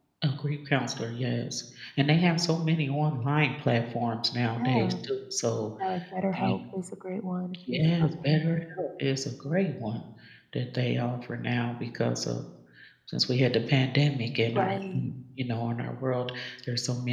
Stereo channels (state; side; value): identical; both; correlation 1.00